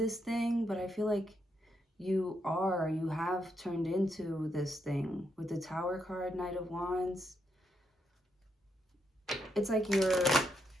thing, but I feel like you have turned into this thing with the Tower card, Knight of Wands. It's like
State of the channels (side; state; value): both; normal; correlation 0.79